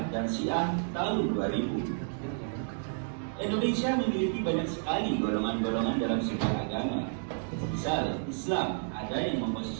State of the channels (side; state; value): left; silent; digital silence